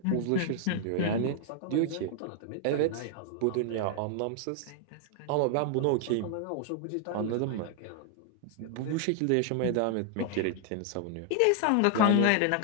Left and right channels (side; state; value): both; different; correlation 0.00